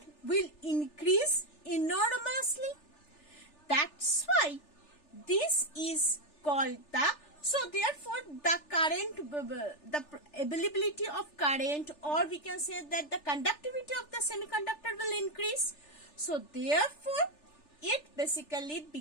will increase enormously. That's why this is called the, so therefore the current, the availability of current, or we can say that the conductivity of the semiconductor will increase. So therefore it basically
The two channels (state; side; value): late; right; 3.4 ms